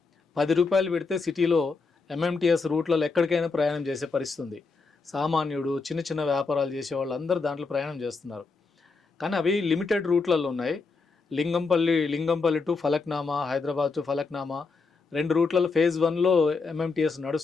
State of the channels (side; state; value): right; quieter; 4.3 dB